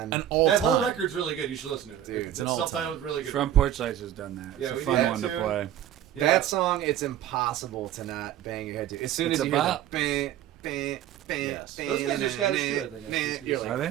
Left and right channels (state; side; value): quieter; left; 11.4 dB